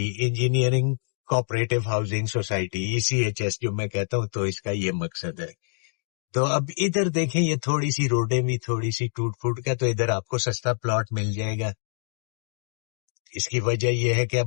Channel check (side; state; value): right; silent; digital silence